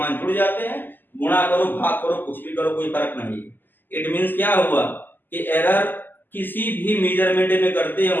जुड़ जाते हैं। गुणा करो, भाग करो, कुछ भी करो, कोई फर्क नहीं है। इट मींस क्या हुआ कि एरर किसी भी मेजरमेंट में करते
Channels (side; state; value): right; late; 0.092 ms